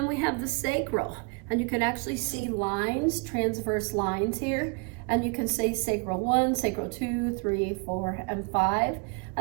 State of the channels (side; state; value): left; quieter; 34.4 dB